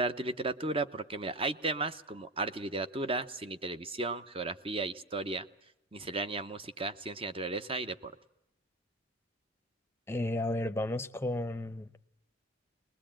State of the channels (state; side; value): normal; both; correlation 0.30